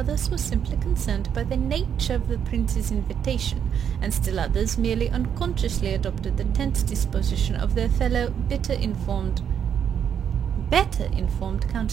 were simply concerned by the nature of the prince's invitation, and still others merely unconsciously adopted the tense disposition of their fellow better informed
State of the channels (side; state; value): left; quieter; 8.3 dB